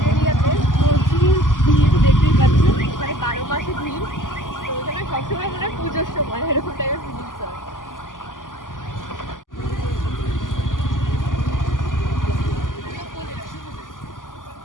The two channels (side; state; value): right; late; 0.88 ms